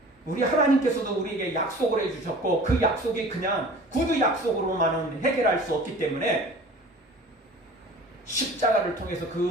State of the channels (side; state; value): both; normal; correlation 0.43